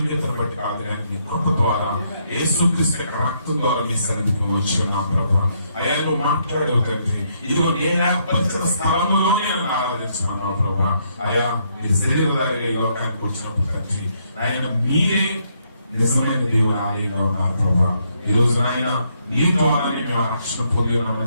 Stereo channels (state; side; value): inverted; both; correlation -0.74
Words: బట్టి కాదు, మీ కృప ద్వారా యేసుక్రీస్తు రక్తం ద్వారా మీ సన్నిధికి వచ్చి ఉన్నాం ప్రభువా. అయ్యా, నువ్వు మాట్లాడేవు తండ్రి. ఇదిగో నేను ఏర్పరిచిన స్థలంలోనే నన్ను ఆరాధించుకున్నావు ప్రభువా. అయ్యా, మీ శరీరధారిగా ఈ లోకానికి వచ్చినప్పుడు తండ్రి, ఆయన మీరే నిజమైన దేవుని ఆలయంగా ఉన్నారు ప్రభువా. ఈ రోజు ఆయన నీ ద్వారానే మేము రక్షణ పొంది